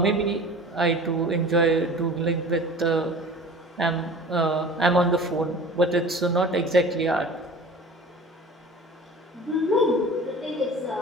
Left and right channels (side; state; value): both; normal; correlation 0.41